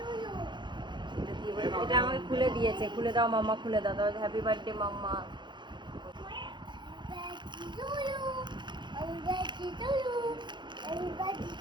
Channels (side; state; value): left; late; 0.22 ms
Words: এটা আমাকে খুলে দিয়েছে, খুলে দাও মাম্মা, খুলে দাও। তাহলে হ্যাপি বার্থডে মাম্মা।